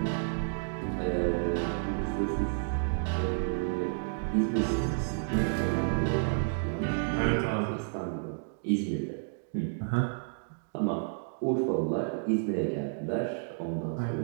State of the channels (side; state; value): left; silent; digital silence